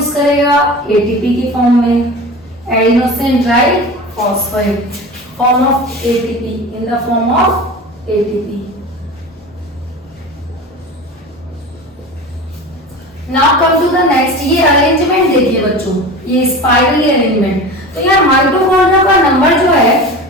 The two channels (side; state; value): both; normal; correlation 0.33